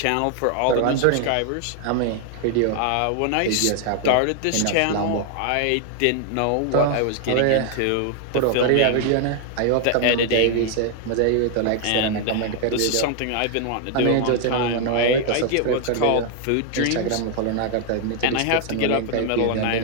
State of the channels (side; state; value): both; different; correlation 0.00